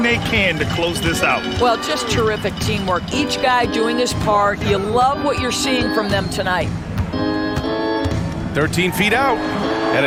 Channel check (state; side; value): identical; both; correlation 1.00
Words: they can to close this out. Well, just terrific teamwork. Each guy doing his part. You love what you're seeing from them tonight. 13 feet out, and